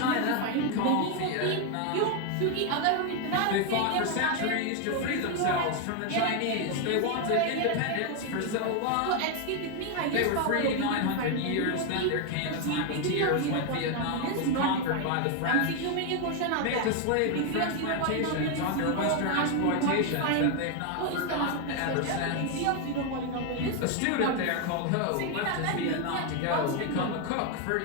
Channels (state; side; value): different; both; correlation 0.01